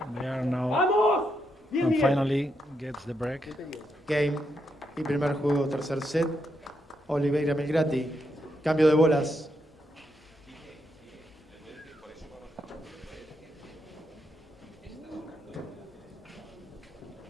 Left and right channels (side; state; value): both; normal; correlation 0.80